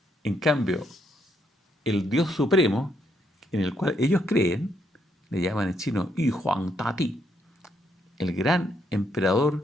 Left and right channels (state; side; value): normal; both; correlation 0.75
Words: En cambio, el Dios Supremo, en el cual ellos creen, le llaman en chino Yu Huang Tati, el gran